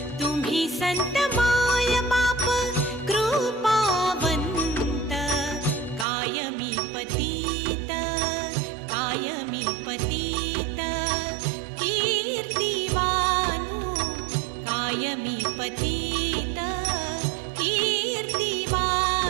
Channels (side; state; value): left; drops out; at 6.1 s